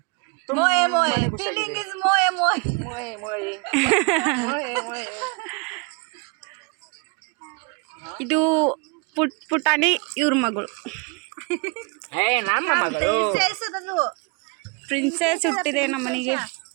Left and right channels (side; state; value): left; quieter; 31.7 dB